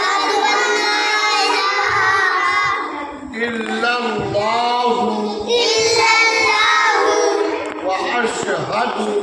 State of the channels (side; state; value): both; identical; correlation 1.00